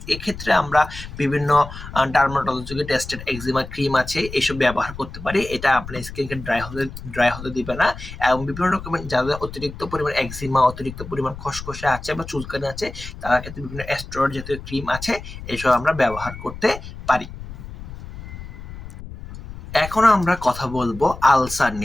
এক্ষেত্রে আমরা বিভিন্ন ডার্মাটোলজিক্যাল টেস্টেড একজিমা ক্রিম আছে, এইসব ব্যবহার করতে পারি। এটা আপনার স্কিনকে ড্রাই হতে দিবে না। এবং বিভিন্ন রকমের যাদের অতিরিক্ত পরিমাণ একজিমা, অতিরিক্ত পরিমাণ খসখসে আছে বা চুলকানি আছে, তার ক্ষেত্রে বিভিন্ন স্টেরয়েড জাতীয় ক্রিম আছে, এইসব আমরা ব্যবহার করতে পারি। এখন আমরা কথা বলবো আলসার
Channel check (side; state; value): left; noise; rumble, 12 dB below the sound